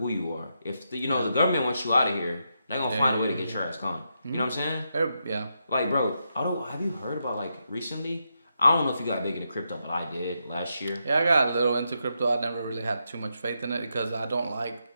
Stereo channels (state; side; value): inverted; both; correlation -0.83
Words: who you are. If the government wants you out of here, they're gonna find a way to get your ass gone. You know what I'm saying? Yeah. Like, bro, have you heard about like recently? I don't know if you got big into crypto, but I did last year. Yeah, I got a little into crypto. I never really had too much faith in it because I don't like